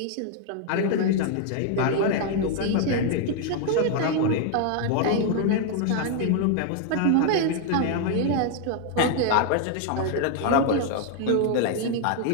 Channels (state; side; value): different; both; correlation 0.00